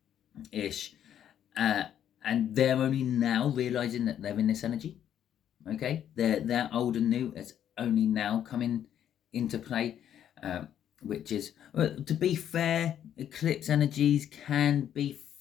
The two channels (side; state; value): right; quieter; 10.1 dB